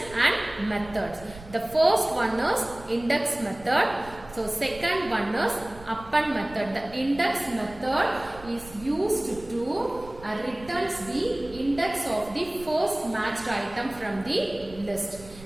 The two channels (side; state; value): right; noise; rumble, 19 dB below the sound